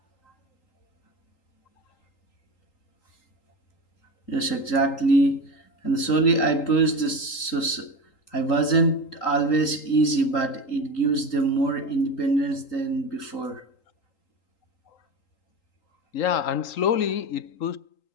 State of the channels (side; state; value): right; late; 3.8 ms